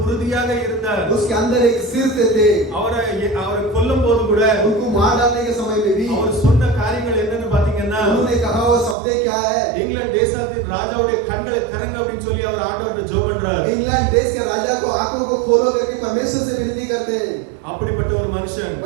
உறுதியாக இருந்தார். उसके अंदर एक सिर थे। அவரை கொல்லும் போது கூட उनको मार डालने के समय में भी அவர் சொன்ன காரியங்கள் என்னன்னு பாத்தீங்கன்னா, उन्होंने कहा वो शब्द क्या है? இங்கிலாந்து தேசத்தின் ராஜாவுடைய கண்களை திறங்க அப்படின்னு சொல்லி அவர் ஆண்டவர்கிட்ட ஜெபம் பண்றார். इंग्लैंड देश के राजा को आंखों को खोलो करके परमेश्वर से विनती करते हैं। அப்படிப்பட்ட ஒரு மனுஷன்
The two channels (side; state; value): left; drops out; at 9.0 s